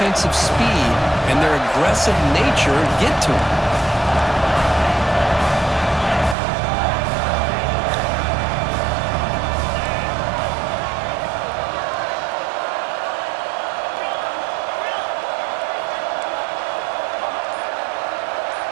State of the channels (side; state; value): left; drops out; at 6.4 s